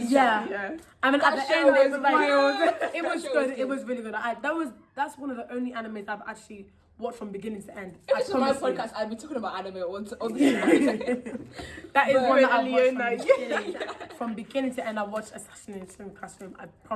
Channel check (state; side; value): identical; both; correlation 1.00